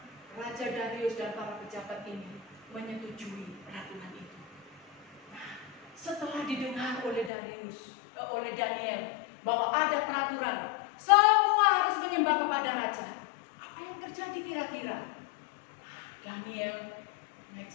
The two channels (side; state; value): right; drops out; at 7.3 s